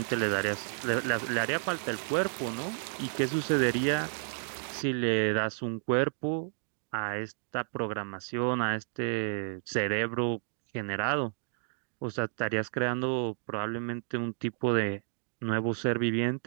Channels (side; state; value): left; silent; digital silence